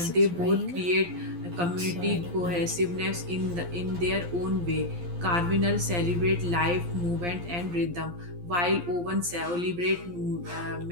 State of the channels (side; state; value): left; late; 11 ms